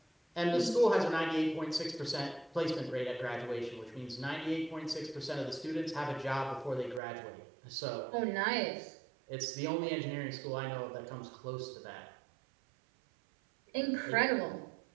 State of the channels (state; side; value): drops out; left; at 7.0 s